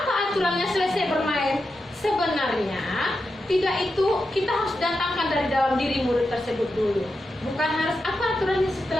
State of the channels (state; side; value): normal; both; correlation 0.88